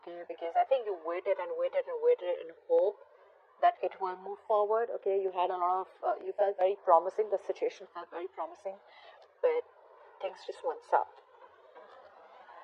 because I think you waited and waited and waited in hope that it will move forward. Okay, you had a lot of you felt very promising, the situation felt very promising, but things just went south.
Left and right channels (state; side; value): identical; both; correlation 1.00